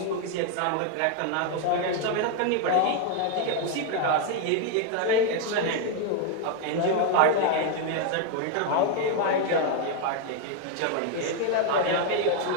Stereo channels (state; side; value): different; both; correlation 0.01